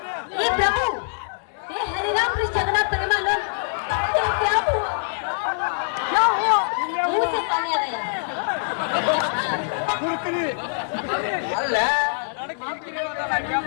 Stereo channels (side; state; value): right; silent; 60 dB below the other